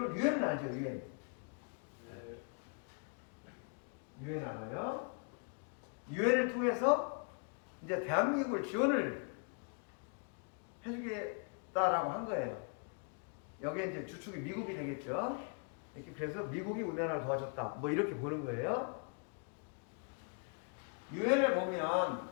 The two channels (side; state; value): right; quieter; 39.6 dB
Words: 유엔을 알죠? 유엔. 유엔 알아요? 유엔을 통해서 이제 대한민국을 지원을 해주겠다라고 한 거예요. 여기에 이제 주축이 미국이 되겠죠. 이렇게 그래서 미국이 우리나라를 도와줬다. 뭐 이렇게 보는 거예요. 유엔에 보면